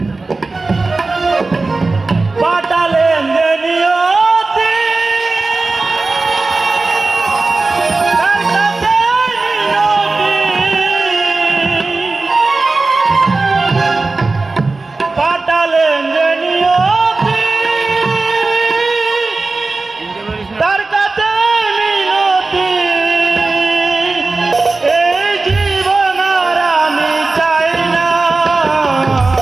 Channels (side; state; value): left; quieter; 3.6 dB